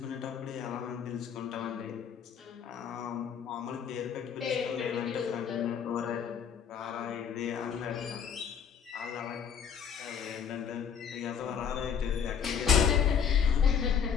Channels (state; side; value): quieter; right; 7.5 dB